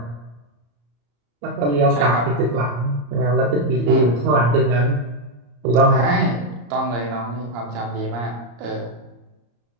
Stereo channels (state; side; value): late; left; 34 ms